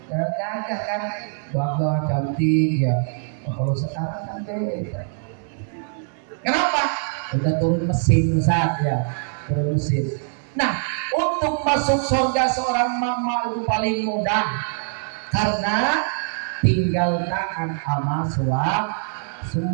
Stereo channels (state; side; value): silent; left; digital silence